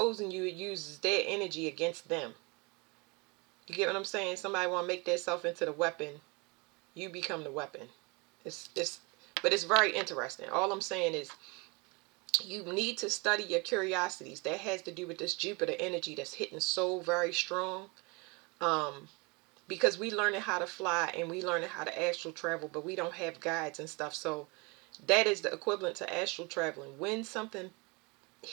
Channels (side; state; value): left; quieter; 28.5 dB